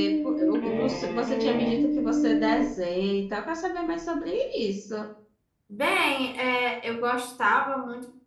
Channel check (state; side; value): identical; both; correlation 1.00